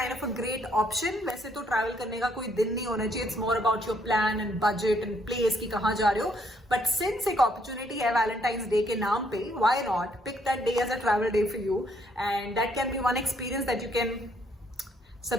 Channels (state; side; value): normal; both; correlation 0.69